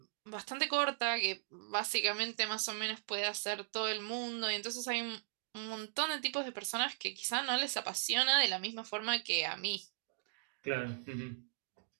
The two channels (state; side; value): silent; left; digital silence